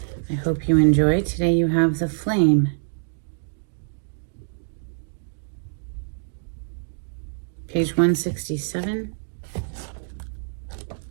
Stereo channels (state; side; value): silent; left; digital silence